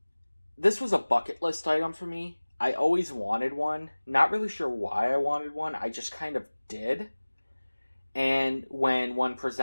This was a bucket list item for me. I always wanted one. Not really sure why I wanted one. I just kind of did. And when one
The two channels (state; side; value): inverted; both; correlation -1.00